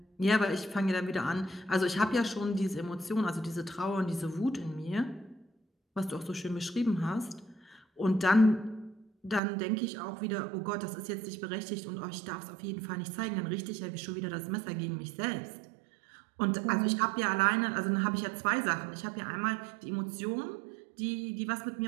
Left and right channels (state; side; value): drops out; left; at 9.4 s